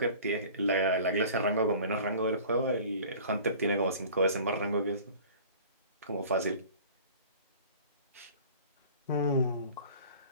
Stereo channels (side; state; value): both; inverted; correlation -0.45